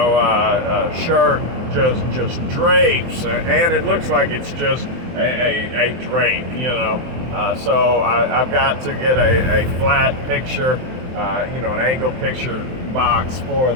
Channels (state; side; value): late; left; 23 ms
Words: shirt just drapes, and it looks like it's just a drape, you know. So I've got to get a flat picture, you know, an angled picture box for